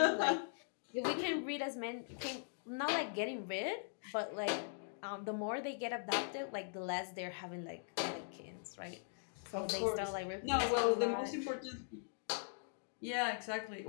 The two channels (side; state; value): right; silent; digital silence